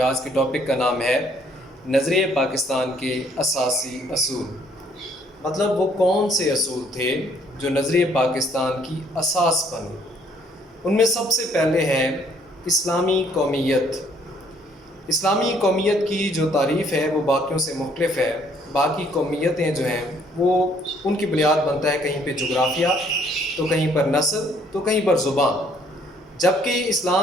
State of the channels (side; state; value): both; normal; correlation 0.64